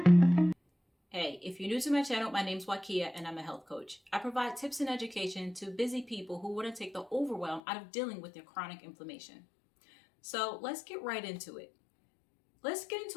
Hey, if you're new to my channel, my name's Wakia and I'm a health coach. I provide tips and education to busy people who want to take the overwhelm out of dealing with their chronic inflammation. So let's get right into it. Let's get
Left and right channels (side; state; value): right; drops out; at 7.6 s